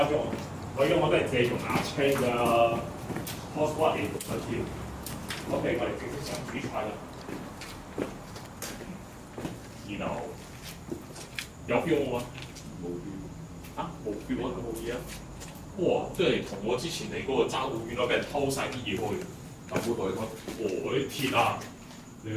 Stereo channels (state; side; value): identical; both; correlation 1.00